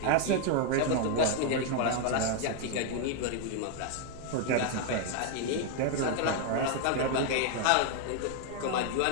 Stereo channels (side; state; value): both; different; correlation 0.00